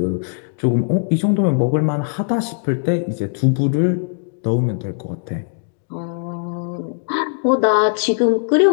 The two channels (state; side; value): silent; right; digital silence